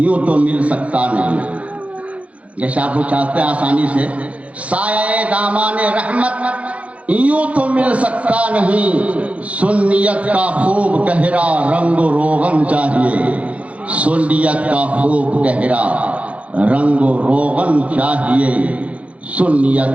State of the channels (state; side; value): late; left; 0.065 ms